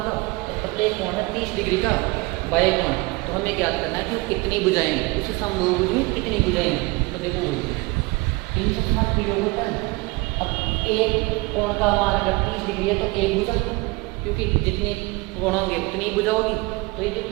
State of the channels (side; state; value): left; quieter; 24.4 dB